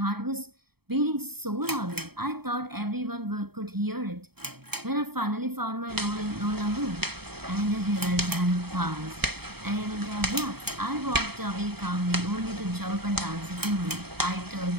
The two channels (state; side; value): late; left; 0.97 ms